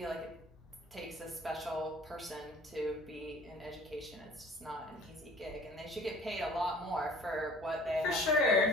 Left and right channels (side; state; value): both; normal; correlation 0.50